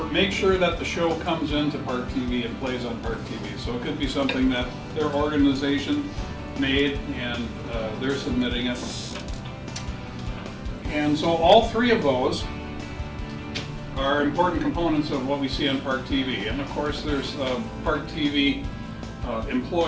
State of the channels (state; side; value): identical; both; correlation 1.00